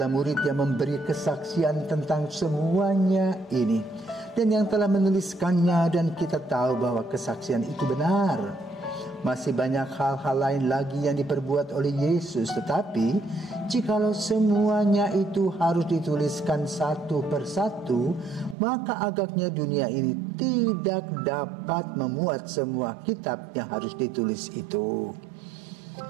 murid yang memberi kesaksian tentang semuanya ini, dan yang telah menuliskannya, dan kita tahu bahwa kesaksian itu benar. Masih banyak hal-hal lain lagi yang diperbuat oleh Yesus, tetapi jikalau semuanya itu harus dituliskan satu persatu, maka agaknya dunia ini tidak dapat memuat semua kitab yang harus ditulis itu.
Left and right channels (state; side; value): drops out; left; at 18.6 s